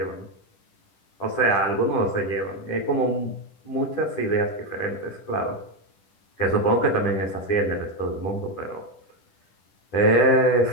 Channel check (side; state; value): right; late; 10 ms